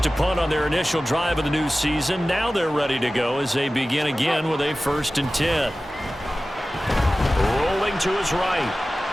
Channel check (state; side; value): normal; both; correlation 0.96